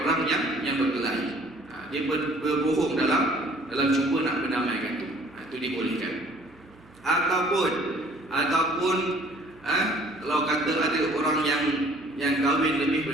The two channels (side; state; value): right; noise; hum, 27 dB below the sound